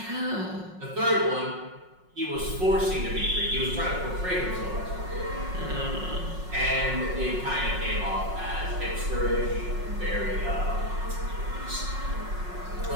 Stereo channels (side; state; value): left; late; 5.5 ms